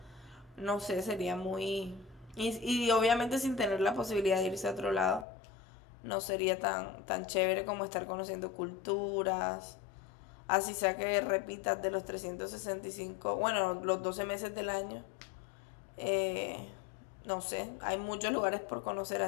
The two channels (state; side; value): drops out; right; at 5.2 s